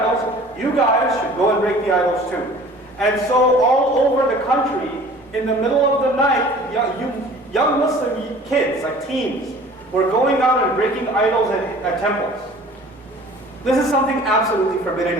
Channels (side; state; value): both; normal; correlation 0.47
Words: you guys should go and break the idols too. And so all over the country, in the middle of the night, young Muslim kids, like teens, were going out and breaking idols at temples. This is something absolutely